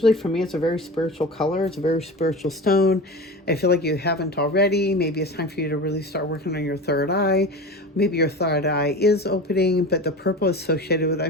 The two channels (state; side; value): normal; both; correlation 0.31